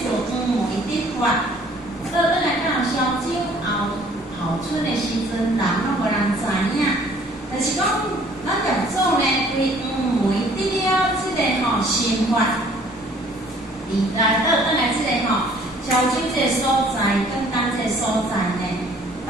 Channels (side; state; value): both; normal; correlation 0.56